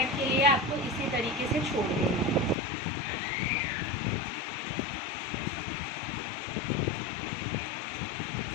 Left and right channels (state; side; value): drops out; right; at 2.6 s